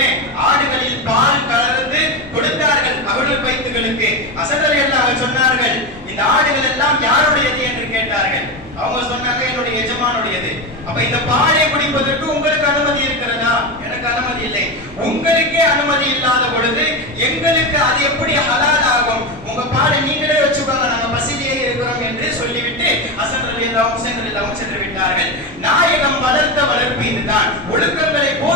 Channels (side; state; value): both; normal; correlation 0.17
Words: ஆடுகளில் பால் கலந்து கொடுத்தார்கள் அவர்கள் பைத்துகளுக்கு. ஹசன் ரலியல்லாஹு சொன்னார்கள், இந்த ஆடுகள் எல்லாம் யாருடையது என்று கேட்டார்கள். அவங்க சொன்னாங்க, என்னுடைய எஜமானுடையது. அப்ப இந்த பாலை குடிப்பதற்கு உங்களுக்கு அனுமதி இருக்கிறதா? எனக்கு அனுமதி இல்லை. உங்களுக்கே அனுமதி இல்லாத பொழுது எங்களுக்கு அது எப்படி ஹலால் ஆகும்? உங்க பாலை நீங்களே வச்சுக்கோங்க, நாங்க பசியிலேயே இருக்கிறோம் என்று சொல்லிவிட்டு ஹசன் ரலியல்லாஹு ஹுசைன் ரலியல்லாஹு சென்று விட்டார்கள். நாயகம் வளர்த்த வளர்ப்பு இதுதான், ஒழுக்கங்களை